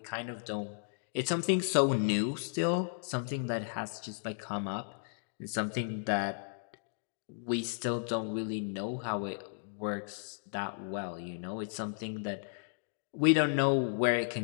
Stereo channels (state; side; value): silent; right; digital silence